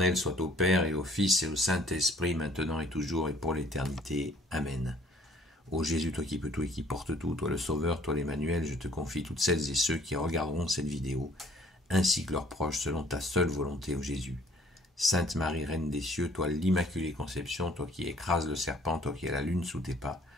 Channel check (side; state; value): both; normal; correlation 0.58